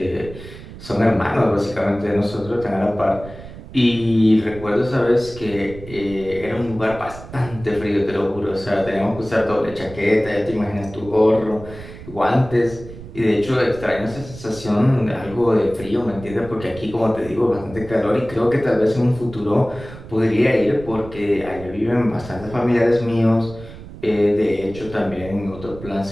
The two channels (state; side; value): noise; right; rumble, 15 dB below the sound